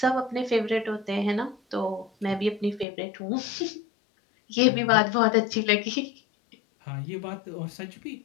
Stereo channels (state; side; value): drops out; right; at 2.9 s